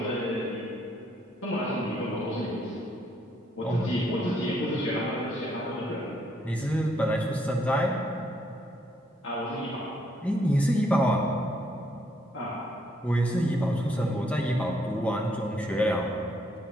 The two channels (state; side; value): normal; both; correlation 0.71